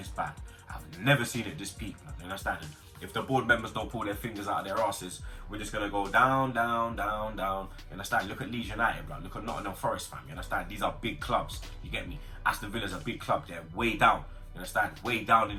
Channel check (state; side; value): identical; both; correlation 1.00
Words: bad. I've never seen it this peak, blood. You understand? If the board members don't pull their fingers out of their asses, we're just gonna go down, down, down, down. You understand? Look at Leeds United, blood. Look at Nottingham Forest, fam. You understand? These are big clubs. You get me? Aston Villa's a big club. They're way down. You understand? Way down